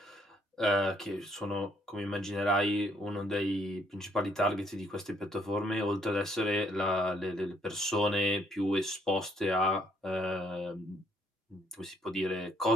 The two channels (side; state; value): both; normal; correlation 0.68